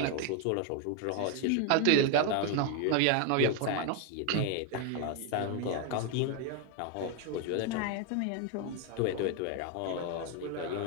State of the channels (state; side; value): different; both; correlation 0.01